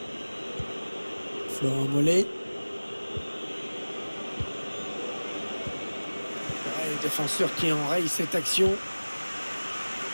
Florent Mollet. Le défenseur qui enraye cette action.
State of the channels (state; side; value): inverted; both; correlation -1.00